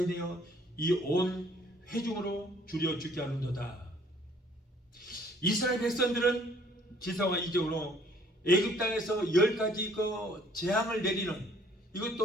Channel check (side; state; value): both; normal; correlation 0.59